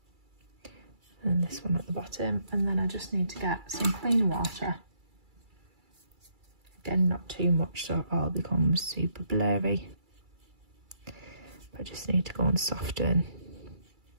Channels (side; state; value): left; late; 2.3 ms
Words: And this one at the bottom, and then I just need to get some clean water. Again, not too much so it all becomes super blurry, but I just need to go and soften